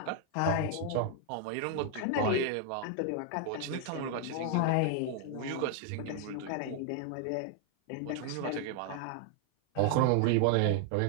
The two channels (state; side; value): different; both; correlation 0.00